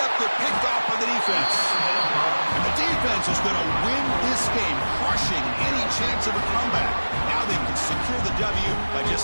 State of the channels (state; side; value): inverted; both; correlation -1.00